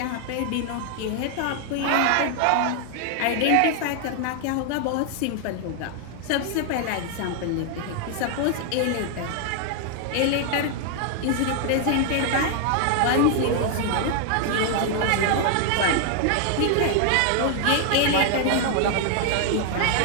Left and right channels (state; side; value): different; both; correlation 0.00